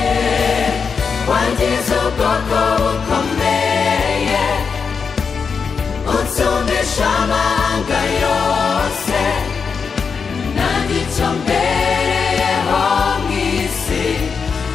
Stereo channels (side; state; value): right; quieter; 5.7 dB